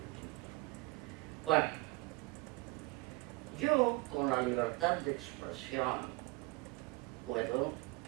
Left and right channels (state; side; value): quieter; left; 24.3 dB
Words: Bueno, yo con la libertad de expresión puedo